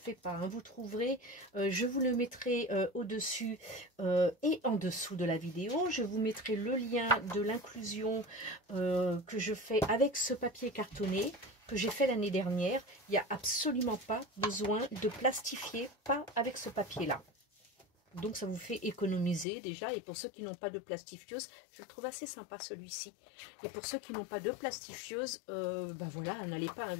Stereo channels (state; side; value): drops out; right; at 19.5 s